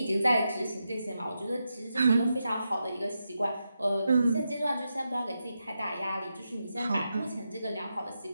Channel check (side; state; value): both; inverted; correlation -0.87